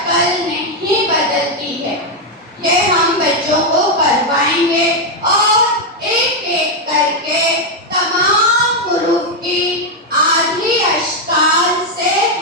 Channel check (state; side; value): normal; both; correlation 0.02